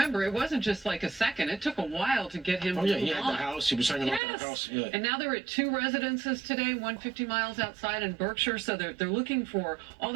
it wasn't just like a second. It took a while to get him Oh, yeah, to he move had on. the house. He was hanging out to the house. Yeah. And now they're at 2 residences today, 150 miles outside in Berkshire. So they're looking for all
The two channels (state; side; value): drops out; left; at 4.2 s